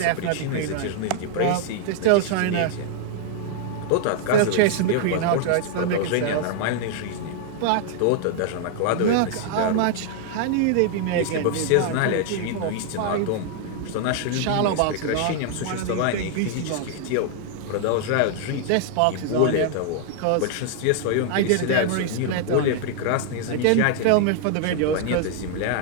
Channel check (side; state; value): both; different; correlation -0.01